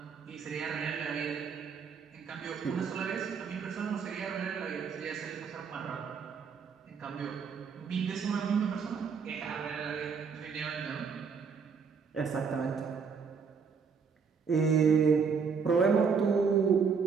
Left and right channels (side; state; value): left; quieter; 5.8 dB